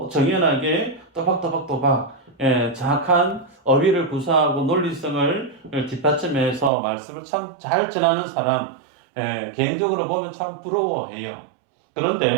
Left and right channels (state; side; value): drops out; left; at 6.7 s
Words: 정연하게 또박또박 정확한 어휘를 구사하고 논리성을 뒷받침해서 말씀을 참 잘 전하는 사람, 개인적으로 보면 참 부러워해요.